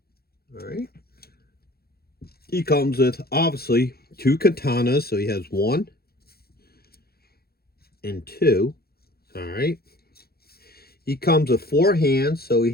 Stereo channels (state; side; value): late; right; 0.45 ms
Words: All right. He comes with, obviously, 2 katanas. So he has 1 and 2. All right. He comes with 4 hands. So he